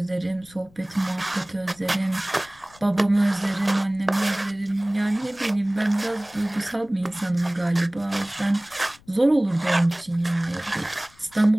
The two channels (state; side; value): noise; left; rumble, 27 dB below the sound